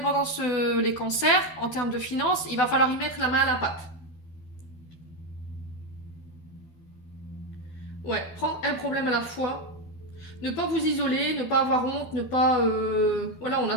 les cancers, en termes de finances, il va falloir y mettre la main à la pâte. Ouais, prendre un problème à la fois. Ne pas vous isoler, ne pas avoir honte, ne pas... voilà,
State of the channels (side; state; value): right; late; 12 ms